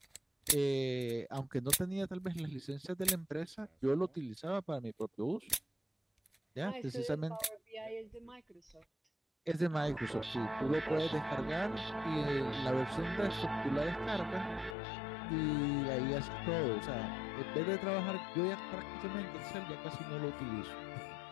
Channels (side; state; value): right; drops out; at 14.8 s